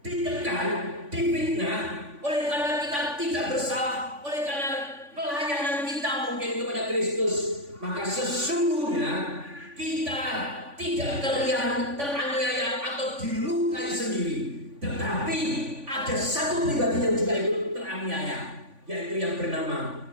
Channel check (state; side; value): late; left; 3.5 ms